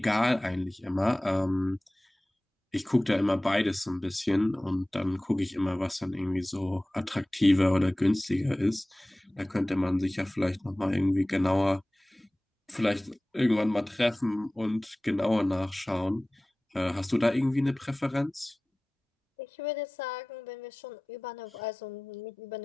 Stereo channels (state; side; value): normal; both; correlation 0.98